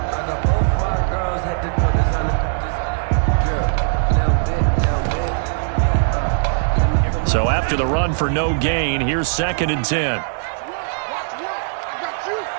So after the run for no gain, here's 2nd and 10.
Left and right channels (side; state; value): left; silent; 62 dB below the other